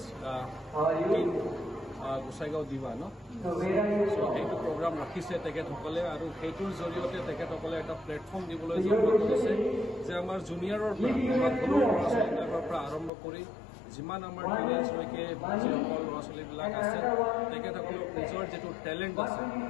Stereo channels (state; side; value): drops out; right; at 13.1 s